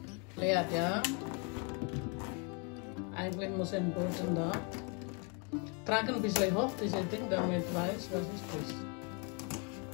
Lihat ya. Eigentlich muss ein Boden da. Tragen ein bisschen hoch diese Ding, damit weiß, was ist das.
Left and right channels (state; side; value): quieter; right; 35.3 dB